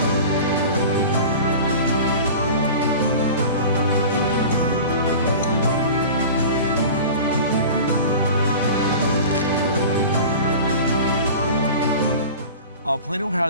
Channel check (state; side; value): inverted; both; correlation -0.36